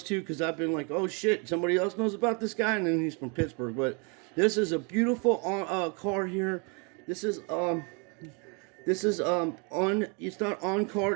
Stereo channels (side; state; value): left; quieter; 34.1 dB